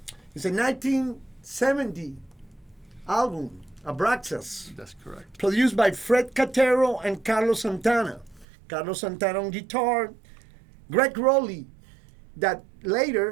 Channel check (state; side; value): drops out; left; at 8.5 s